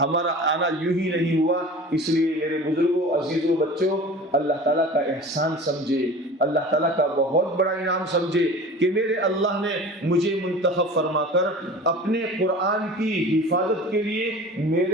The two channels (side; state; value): both; normal; correlation 0.39